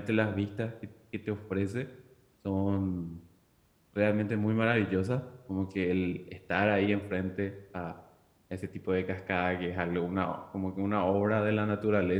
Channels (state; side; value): identical; both; correlation 1.00